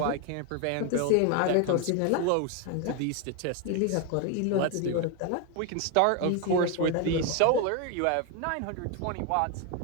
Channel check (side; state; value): both; different; correlation 0.01